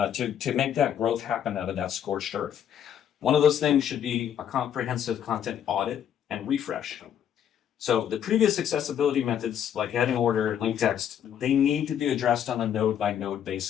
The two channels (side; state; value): right; quieter; 9.5 dB